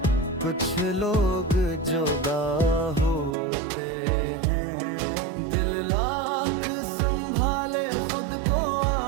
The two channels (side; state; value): left; drops out; at 3.4 s